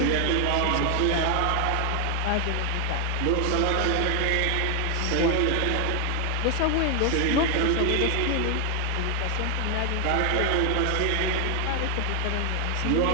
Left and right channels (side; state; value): both; different; correlation 0.00